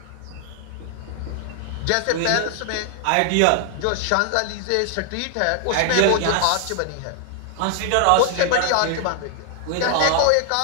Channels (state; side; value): different; both; correlation 0.00